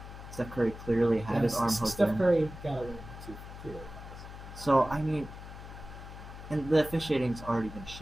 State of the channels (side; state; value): left; noise; hum, 13 dB below the sound